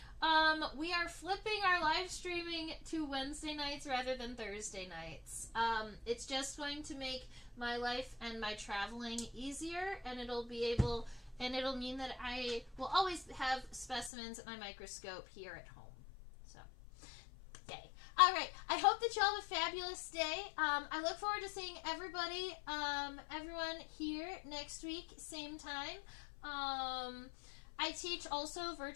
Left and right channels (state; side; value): drops out; right; at 14.1 s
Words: we are flipping our live streaming to Wednesday nights rather than Thursday nights. It's just going to make my life and my traveling easier, and it'll mean that I will always have specimens at my microscope here at home. So, yay. Alright, I hope that y'all have a fabulous day. I look forward to seeing everybody, everyone here next week, same time. I teach also